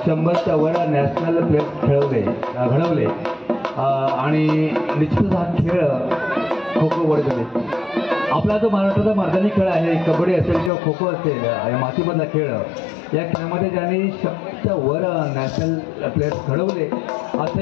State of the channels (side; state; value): right; drops out; at 10.7 s